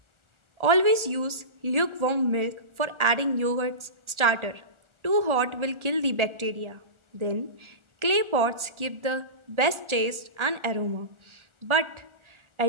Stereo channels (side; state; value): left; late; 1.4 ms